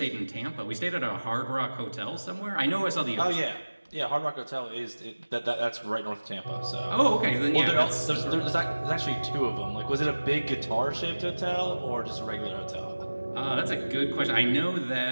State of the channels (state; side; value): inverted; both; correlation -1.00